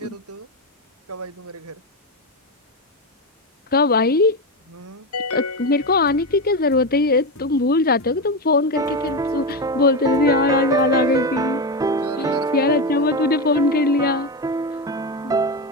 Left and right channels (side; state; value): both; normal; correlation 0.14